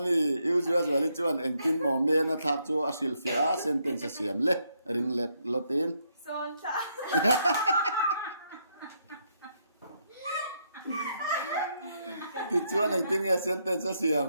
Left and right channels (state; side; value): inverted; both; correlation -0.76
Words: usual chuan engtin mo me na thak chu a hril fe a sentence siam le ring let lotin son ta ti chuan engtin nge sentence siam